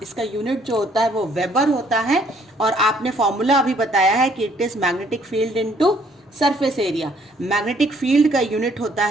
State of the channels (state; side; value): normal; both; correlation 0.63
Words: इसका यूनिट जो होता है वो वेबर होता है, और आपने फॉर्मूला अभी बताया है कि it is magnetic field into surface area. Magnetic field का यूनिट होता